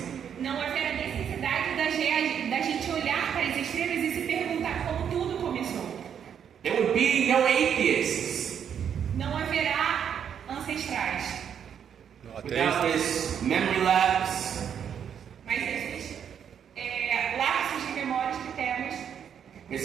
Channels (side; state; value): left; quieter; 8.3 dB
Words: não haverá necessidade da gente olhar para as estrelas e se perguntar como tudo começou. There would be no atheists. Não haverá ancestrais. without this memory lapse, Mas esses lapsos de memórias que temos,